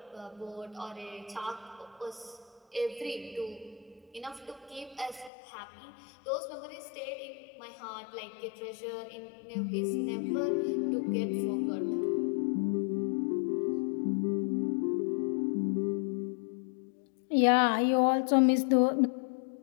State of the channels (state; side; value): drops out; right; at 5.3 s